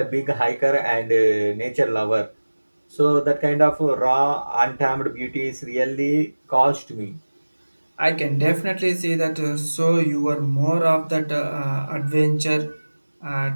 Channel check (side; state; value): both; inverted; correlation -1.00